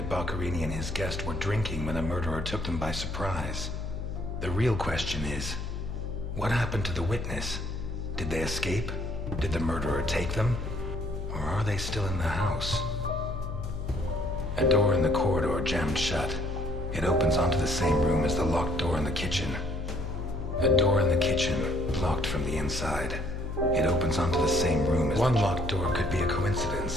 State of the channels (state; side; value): noise; left; hum, 5 dB below the sound